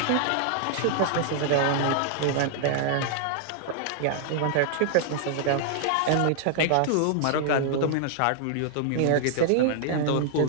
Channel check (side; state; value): both; different; correlation 0.00